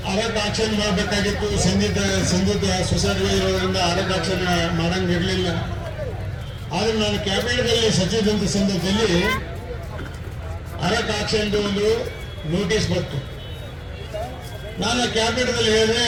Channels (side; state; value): both; identical; correlation 1.00